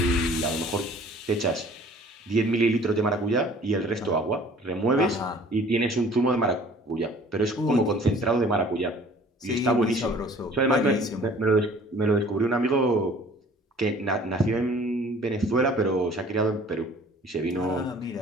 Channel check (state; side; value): normal; both; correlation 0.51